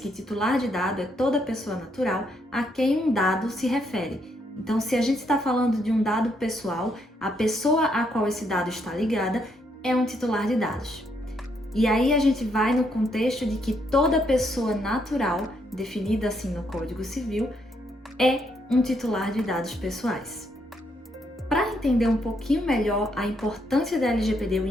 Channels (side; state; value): both; normal; correlation 0.74